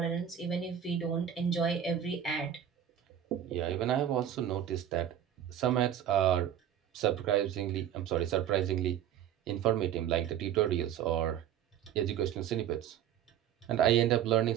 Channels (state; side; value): quieter; left; 10.0 dB